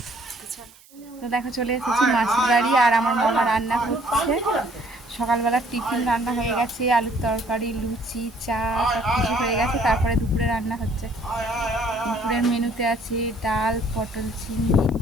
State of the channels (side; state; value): right; noise; hiss, 26 dB below the sound